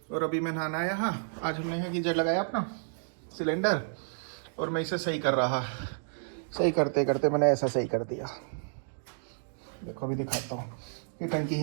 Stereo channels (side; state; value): left; silent; digital silence